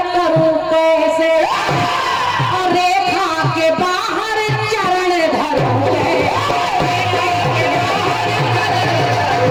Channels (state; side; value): identical; both; correlation 1.00